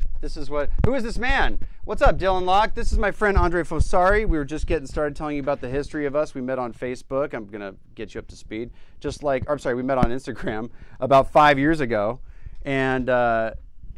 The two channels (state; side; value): identical; both; correlation 1.00